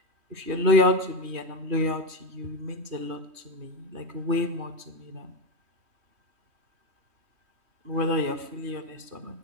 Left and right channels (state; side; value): late; left; 3.1 ms